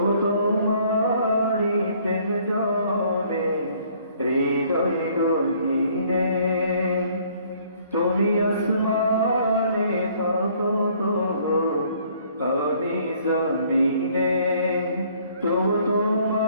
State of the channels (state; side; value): inverted; both; correlation -0.60